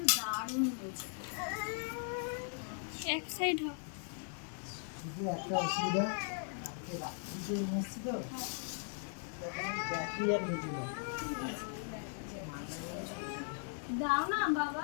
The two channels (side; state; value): right; silent; 52 dB below the other